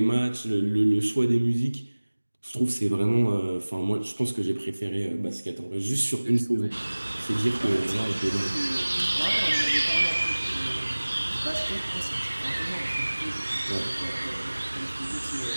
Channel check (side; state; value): both; inverted; correlation -1.00